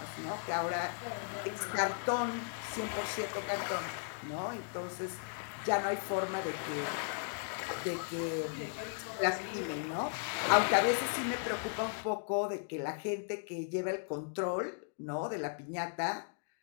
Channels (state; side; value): silent; right; digital silence